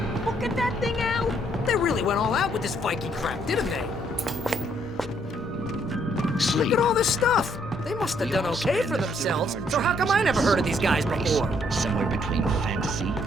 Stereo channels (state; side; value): normal; both; correlation 0.69